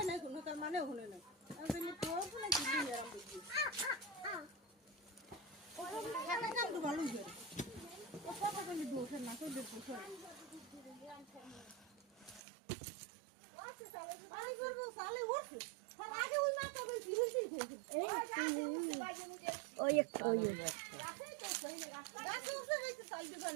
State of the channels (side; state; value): left; drops out; at 12.4 s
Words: না কোনো তার মানে হলো না আমি তোর না কি দিই আরাম দিই ওরা কাম তো ভালো করে ও কথা বলি দোষ না তো দোষ আই গো সালে ওঠ আগে ওই মাথা কই ফিরতি ওই একটা